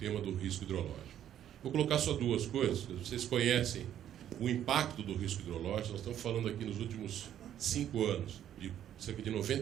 do risco hidrológico. Vou colocar só duas coisas. Vocês conhecem o impacto do risco hidrológico. Nós estamos falando aqui nos últimos 5 anos de cerca de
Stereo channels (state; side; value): quieter; left; 10.8 dB